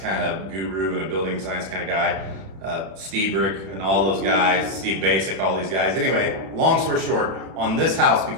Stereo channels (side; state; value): left; late; 31 ms